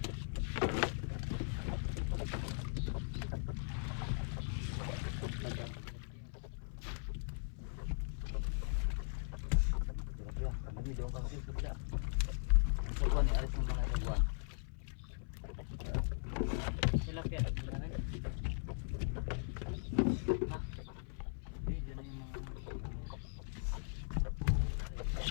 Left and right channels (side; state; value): right; silent; 52 dB below the other